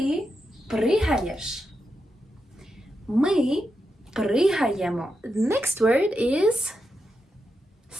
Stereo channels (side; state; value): both; normal; correlation 0.86